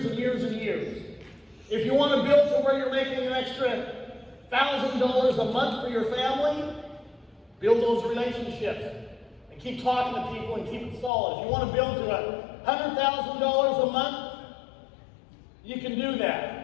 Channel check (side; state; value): right; drops out; at 11.1 s